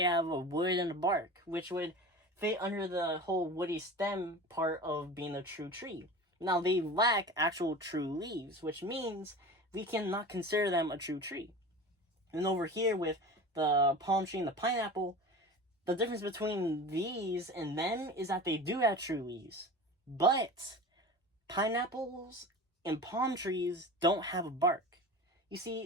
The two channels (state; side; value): normal; both; correlation 0.34